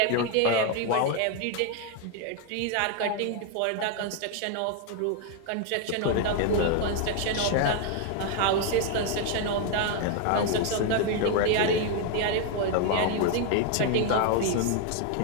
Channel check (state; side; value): different; both; correlation 0.01